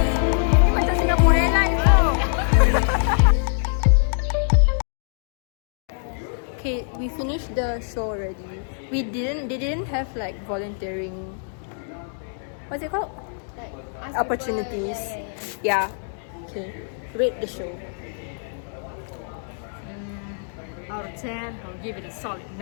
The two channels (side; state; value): right; silent; digital silence